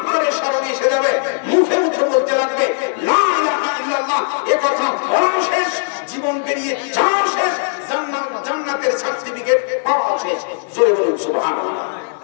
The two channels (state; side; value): silent; right; 60 dB below the other